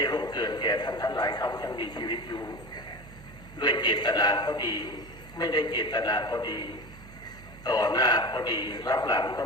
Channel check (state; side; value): noise; right; hum, 18 dB below the sound